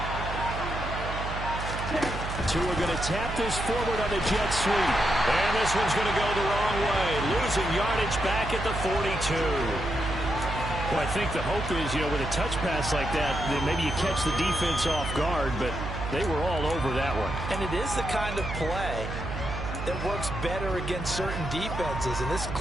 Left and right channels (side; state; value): right; noise; hum, 6 dB below the sound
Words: Tua going to tap this forward on the jet sweep. And this one's going to go the wrong way. Losing yardage back at the 42. Well, I think the hope is, with a touch pass like that, then maybe you catch the defense off guard, but they were all over that one. And it is the kind of play that works better against certain defenses, and this